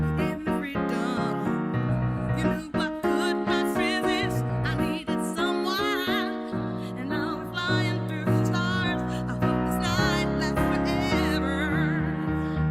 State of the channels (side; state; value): both; identical; correlation 1.00